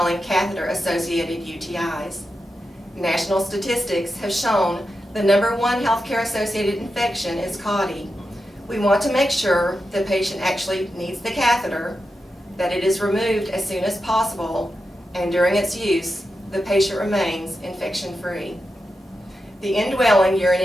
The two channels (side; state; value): both; normal; correlation 0.89